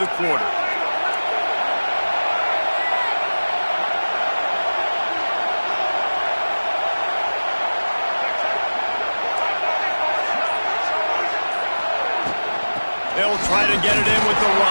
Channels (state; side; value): inverted; both; correlation -1.00